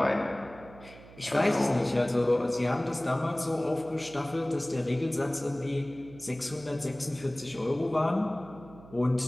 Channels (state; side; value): noise; right; hum, 19 dB below the sound